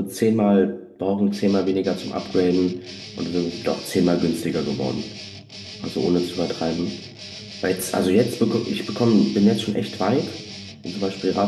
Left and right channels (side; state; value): both; identical; correlation 1.00